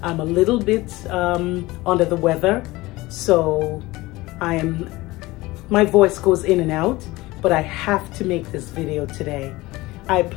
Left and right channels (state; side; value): quieter; right; 20.0 dB